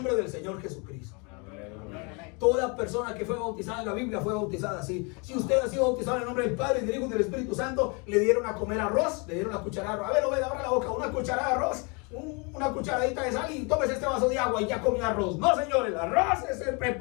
del Señor Jesucristo. Toda persona que fue bautizada en la Biblia fue bautizada así. Si usted ha sido bautizado en el nombre del Padre, y del Hijo y del Espíritu Santo, le dieron a comer arroz, le dieron la cucharada de arroz. A ver, Obed, abra la boca, una cucharada de arroz, una cucharadita de sal y tómese este vaso de agua y ya comió arroz. No, señor, el arroz es el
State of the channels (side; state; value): right; quieter; 31.7 dB